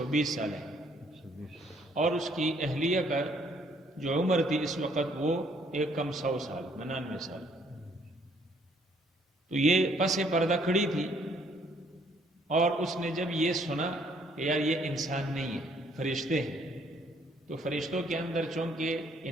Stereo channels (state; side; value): normal; both; correlation 0.65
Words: سال ہے، اور اس کی اہلیہ کا جو عمر تھی اس وقت وہ ایک کم 100 سال، 99 سال۔ تو یہ پس پردہ کھڑی تھی، اور اس نے جب یہ سنا کہ یار یہ انسان نہیں ہے، فرشتے ہیں، تو فرشتوں کے اندر چونکہ